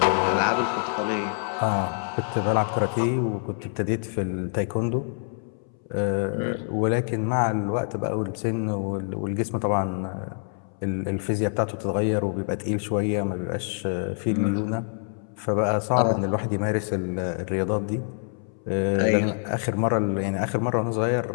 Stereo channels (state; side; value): silent; right; 61 dB below the other